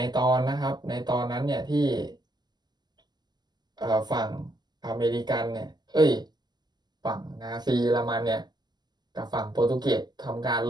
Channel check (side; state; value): left; late; 0.21 ms